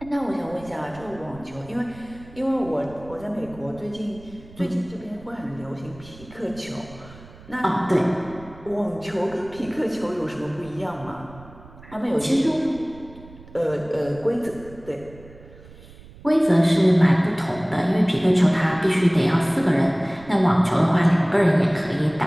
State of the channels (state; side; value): noise; right; rumble, 20 dB below the sound